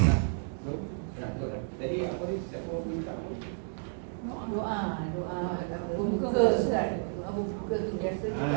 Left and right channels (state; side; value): silent; left; digital silence